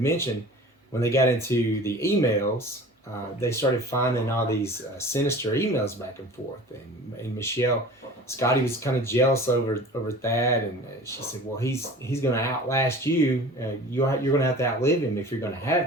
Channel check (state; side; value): normal; both; correlation 0.41